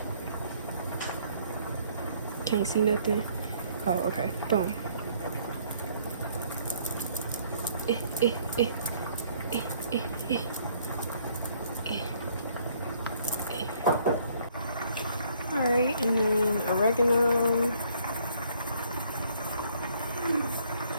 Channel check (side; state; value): both; inverted; correlation -0.63